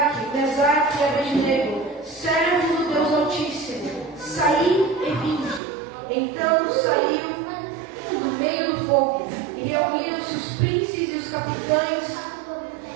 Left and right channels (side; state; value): left; drops out; at 5.6 s